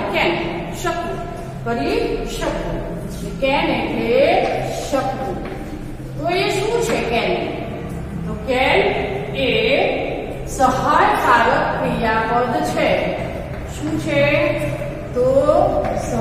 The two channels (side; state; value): both; identical; correlation 1.00